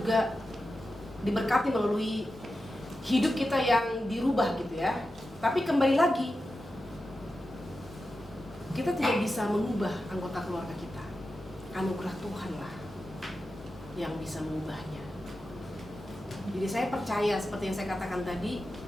diberkati melalui hidup kita yang dirubah gitu ya. Tapi kembali lagi, kita tidak bisa mengubah anggota keluarga kita. Anugerah Tuhanlah yang bisa mengubahnya. Jadi saya percaya seperti yang saya katakan tadi,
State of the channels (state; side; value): normal; both; correlation 0.91